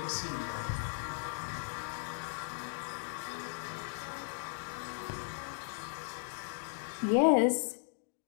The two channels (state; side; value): silent; right; digital silence